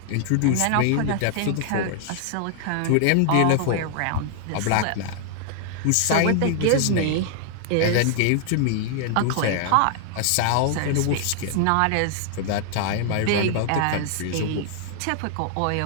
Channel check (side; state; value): both; different; correlation 0.00